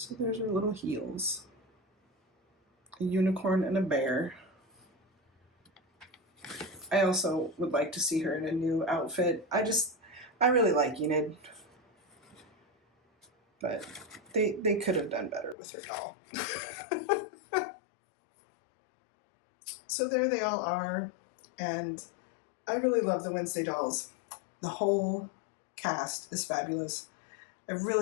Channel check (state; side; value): drops out; right; at 15.6 s